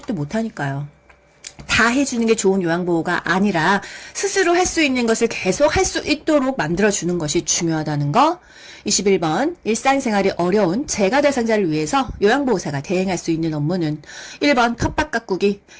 못하니까요. 다 해주는 게 좋은 요양보호가 아니라 스스로 할 수 있는 것을 계속 할 수 있도록 만들어주는 것이 중요하다는 거. 21번 일상생활이 어려운 재가 대상자를 위해서 요양보호사가 대행할 수 있는 업무는 1번 텃밭 가꾸기.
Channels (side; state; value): both; identical; correlation 1.00